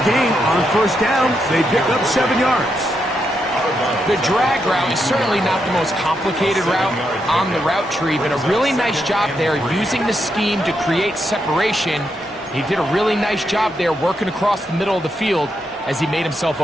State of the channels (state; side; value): normal; both; correlation 0.82